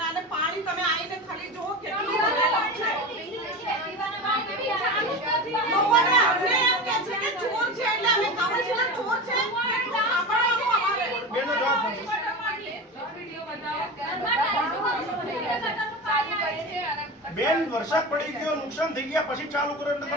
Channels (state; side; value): normal; both; correlation 0.26